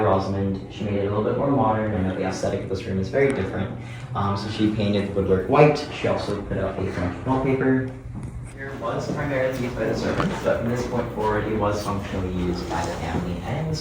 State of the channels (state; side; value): identical; both; correlation 1.00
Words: Rosamond. She made it a little bit more modern, and the aesthetic of this room is very different. So she painted the woodwork white. She also put up a French wallpaper. Here was primarily used by the servants, but from this point forward, it was functionally used by the family and the